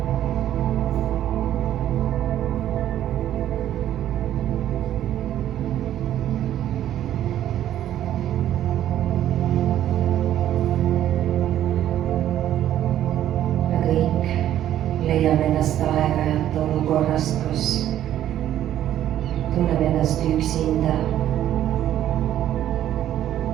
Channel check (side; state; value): left; quieter; 11.8 dB